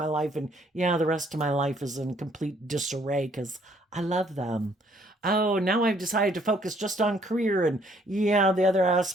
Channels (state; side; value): normal; both; correlation 0.65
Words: life. And yeah, the rest of my life is in complete disarray because I love them. Oh, now I've decided to focus just on career. And yeah, the other